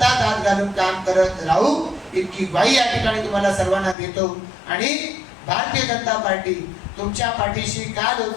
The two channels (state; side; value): drops out; right; at 4.0 s